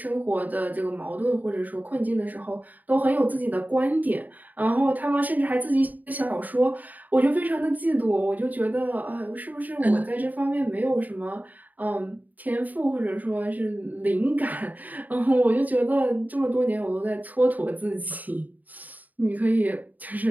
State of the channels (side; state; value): left; late; 0.081 ms